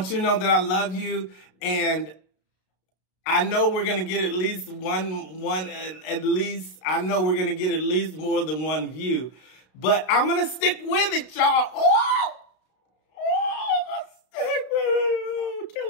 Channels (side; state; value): right; late; 32 ms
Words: you to know that I love you, and I know we're going to get at least I know we're going to get at least more than one view, but I'm going to stick with it, y'all. I'm going to stick with it. Oh,